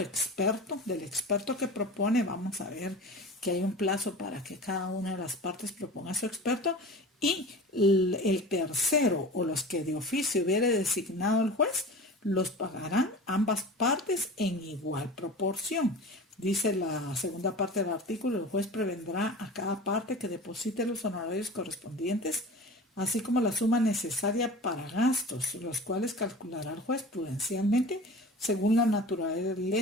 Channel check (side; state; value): both; normal; correlation 0.36